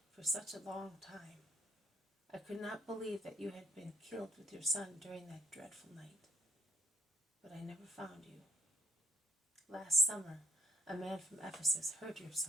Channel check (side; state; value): both; normal; correlation 0.64